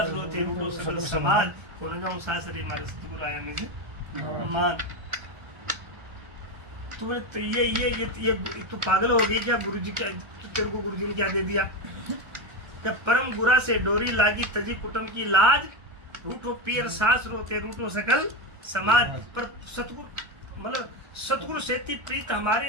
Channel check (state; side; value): late; left; 1.3 ms